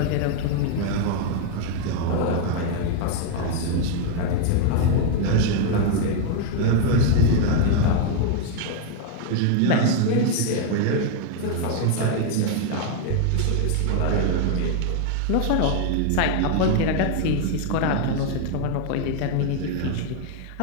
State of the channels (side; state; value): both; different; correlation 0.00